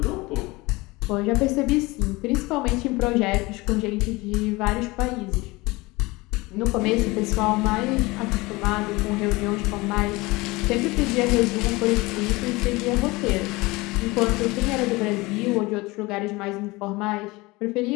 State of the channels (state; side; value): quieter; right; 22.6 dB